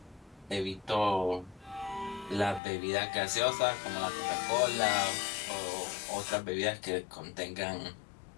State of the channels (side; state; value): right; drops out; at 2.6 s